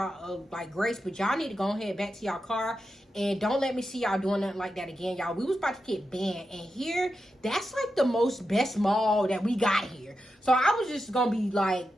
like grace. But y'all need to go ahead back to y'all car. And don't let me see y'all doing nothing like that again, y'all. We was about to get banned. And here, that's like the best mall that we got here. So I was just going to be like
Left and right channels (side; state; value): both; normal; correlation 0.89